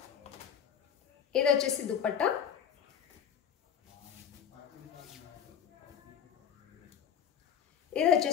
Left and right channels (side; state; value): right; quieter; 8.3 dB